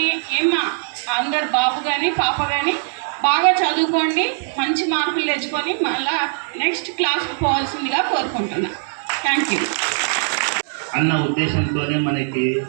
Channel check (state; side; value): silent; left; digital silence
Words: ఏమ్మా అందరు బాబు కానీ పాప కానీ బాగా చదువుకోండి, మంచి మార్కులు తెచ్చుకొని మళ్ళా నెక్స్ట్ క్లాస్కి పోవాల్సిందిగా కోరుకుంటున్నా. Thank you. అన్న ఉద్దేశంతోనే మనకి